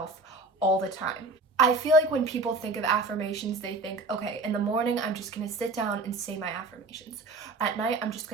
all the time. I feel like when people think of affirmations, they think, okay, in the morning, I'm just going to sit down and say my affirmations. At night, I'm just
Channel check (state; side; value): quieter; left; 3.2 dB